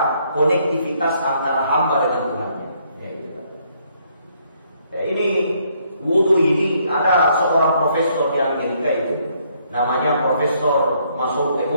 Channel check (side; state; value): both; inverted; correlation -0.69